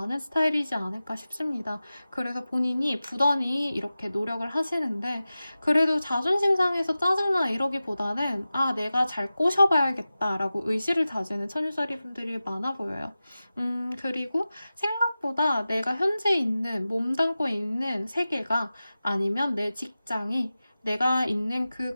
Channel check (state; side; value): inverted; both; correlation -0.95